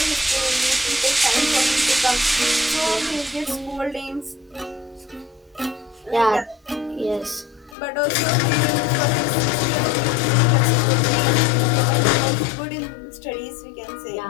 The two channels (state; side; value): drops out; right; at 7.8 s